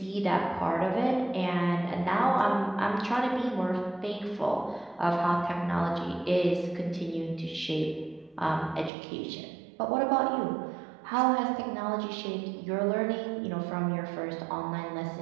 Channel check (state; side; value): drops out; left; at 8.9 s